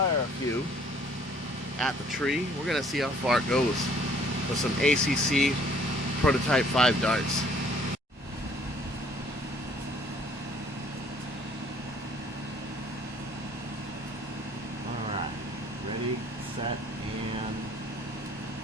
a few at the tree. We're gonna see how far it goes with some ACC prototype 5 darts. Alright, ready, set, and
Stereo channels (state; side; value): normal; both; correlation 0.58